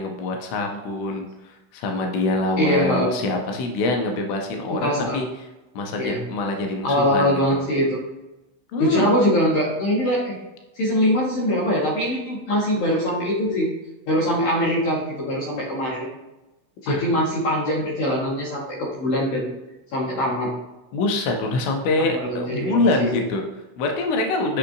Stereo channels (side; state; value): right; late; 16 ms